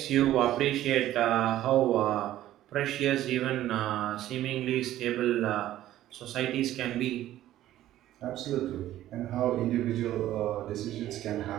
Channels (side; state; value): left; quieter; 13.6 dB